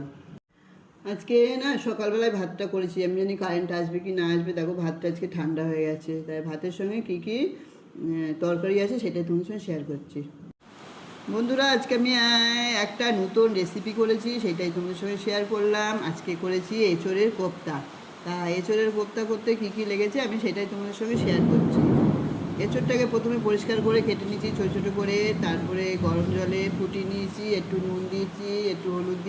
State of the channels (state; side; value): identical; both; correlation 1.00